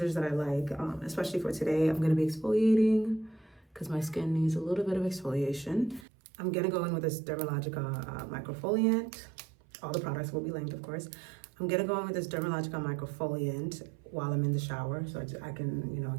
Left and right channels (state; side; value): drops out; left; at 6.1 s